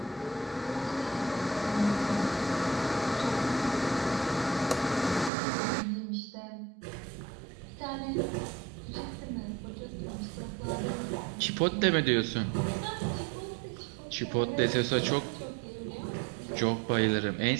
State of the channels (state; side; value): drops out; left; at 5.3 s